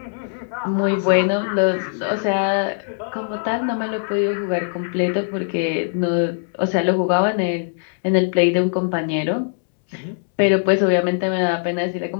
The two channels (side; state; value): right; silent; digital silence